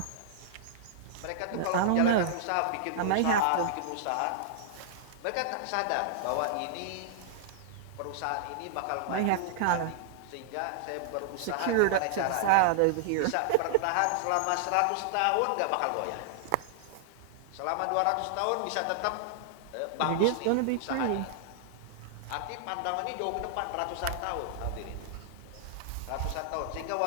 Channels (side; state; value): both; different; correlation -0.01